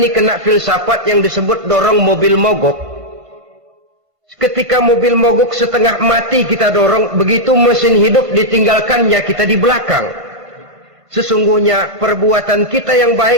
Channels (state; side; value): late; left; 1.5 ms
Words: kena filsafat yang disebut dorong mobil mogok. Ketika mobil mogok setengah mati kita dorong, begitu mesin hidup ditinggalkannya kita di belakang. Sesungguhnya perbuatan kita yang